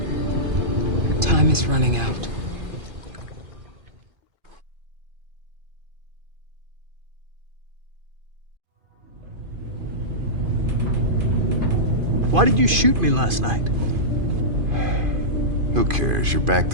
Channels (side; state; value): left; late; 2.5 ms